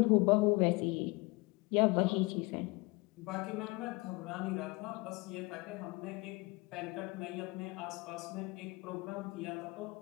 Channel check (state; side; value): quieter; right; 24.9 dB